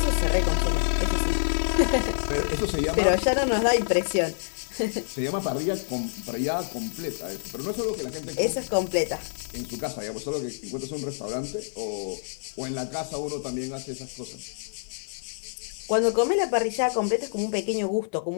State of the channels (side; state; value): right; silent; 60 dB below the other